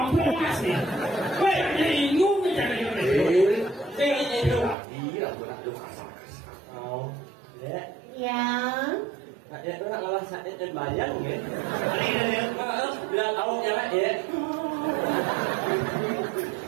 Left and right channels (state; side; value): drops out; left; at 4.8 s